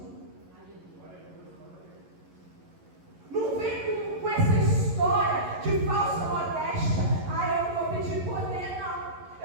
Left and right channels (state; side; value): late; left; 11 ms